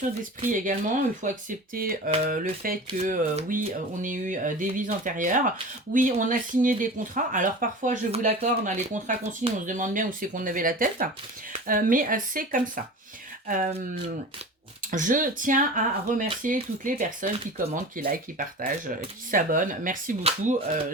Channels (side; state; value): both; normal; correlation 0.35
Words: d'esprit également. Il faut accepter le fait que oui, on ait eu des vies antérieures. Oui, on a signé des contrats. Alors parfois, je vous l'accorde, dans les contrats qu'on signe, on se demande bien où c'est qu'on avait la tête. Mais c'est comme ça. Je tiens à remercier toutes les personnes qui commentent, qui likent, qui partagent, qui s'abonnent. Merci beaucoup.